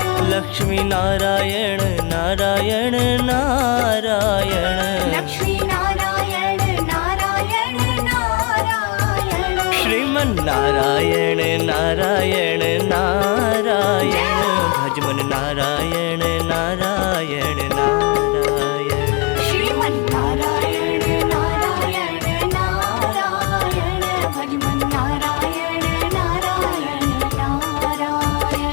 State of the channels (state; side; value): quieter; right; 30.0 dB